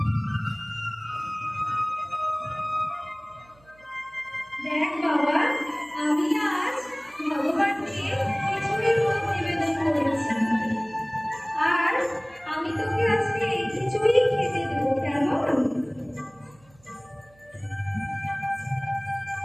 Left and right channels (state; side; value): noise; right; hum, 29 dB below the sound